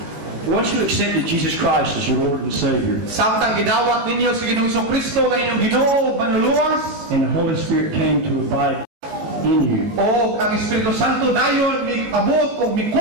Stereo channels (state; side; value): late; left; 18 ms